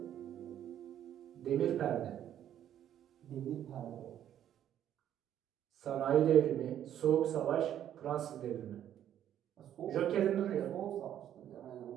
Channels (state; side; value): quieter; left; 10.7 dB